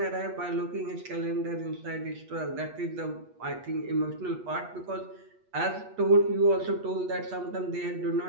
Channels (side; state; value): left; late; 8.4 ms